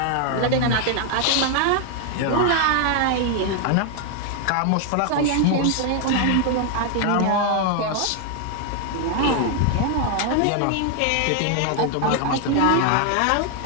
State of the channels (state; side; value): different; both; correlation 0.00